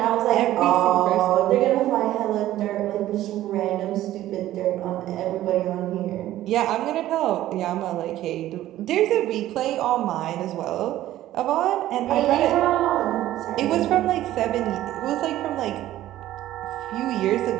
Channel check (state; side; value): quieter; left; 14.1 dB